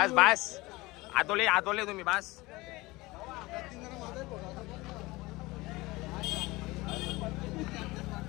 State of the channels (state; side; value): quieter; right; 21.3 dB